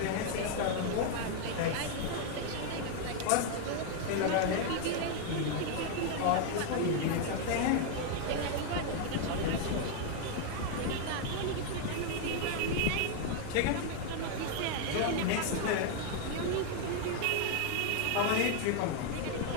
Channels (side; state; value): both; different; correlation 0.00